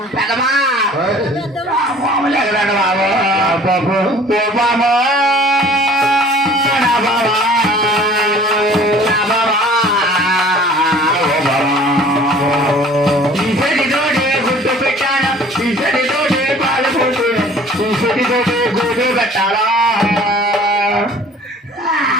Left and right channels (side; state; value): both; normal; correlation 0.50